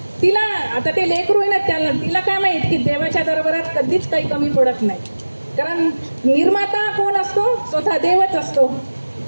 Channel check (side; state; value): both; inverted; correlation -1.00